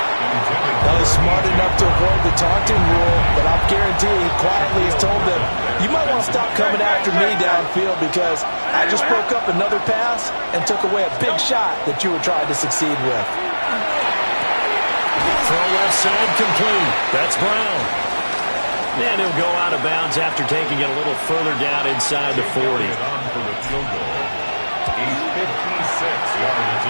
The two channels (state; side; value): inverted; both; correlation -1.00